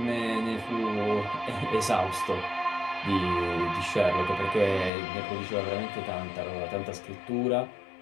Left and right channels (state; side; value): drops out; right; at 4.9 s